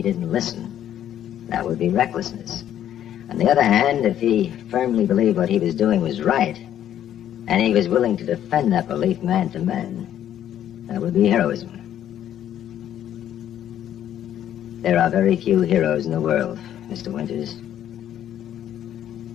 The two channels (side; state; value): right; quieter; 10.9 dB